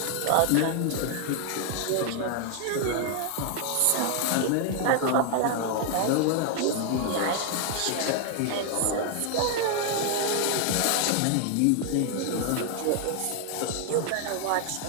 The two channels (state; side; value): different; both; correlation 0.00